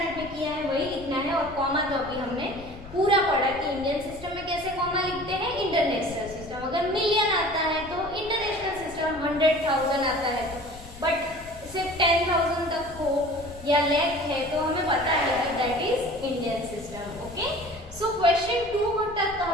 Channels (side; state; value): left; noise; rumble, 17 dB below the sound